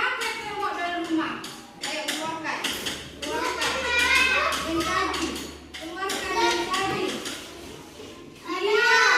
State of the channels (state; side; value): identical; both; correlation 1.00